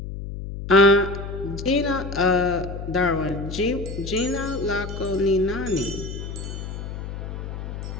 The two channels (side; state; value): left; noise; hum, 7 dB below the sound